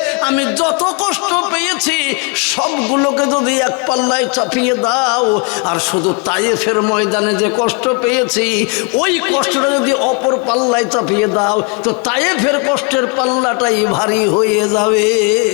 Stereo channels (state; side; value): quieter; right; 31.7 dB